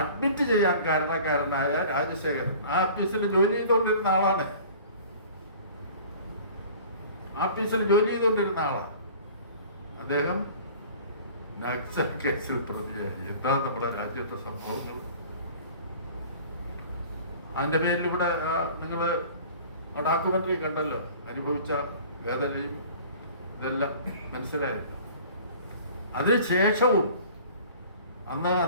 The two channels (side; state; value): both; inverted; correlation -0.46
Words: ചെയ്യാൻ കാരണക്കാരനായ രാജശേഖരൻ ആ ഓഫീസിൽ ജോലി ചെയ്തുകൊണ്ടിരുന്ന ആളാണ്. ഓഫീസിൽ ജോലി ചെയ്തുകൊണ്ടിരുന്ന ആളാണ് അദ്ദേഹം. നക്സൽ കേസിൽ പ്രതിയായി. എന്താ നമ്മുടെ രാജ്യത്തെ സംഭവങ്ങൾ? അതിന്റെ പേരിൽ ഇവിടെ നിങ്ങൾ ഡോക്യുമെന്ററി കണ്ടല്ലോ, അനുഭവിച്ച വേദനയും ഇതെല്ലാം മനസ്സിലായല്ലോ. അതിനുശേഷവും അന്ന്